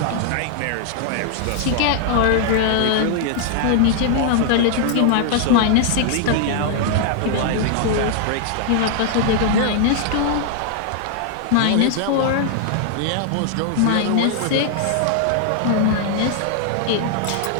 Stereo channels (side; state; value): both; different; correlation 0.00